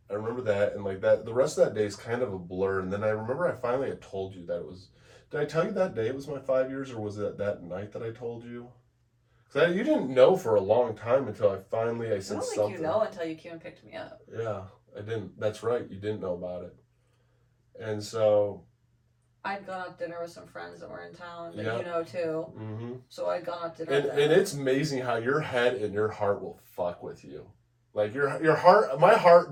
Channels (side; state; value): both; identical; correlation 1.00